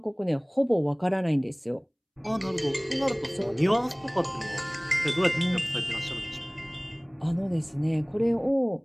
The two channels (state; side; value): identical; both; correlation 1.00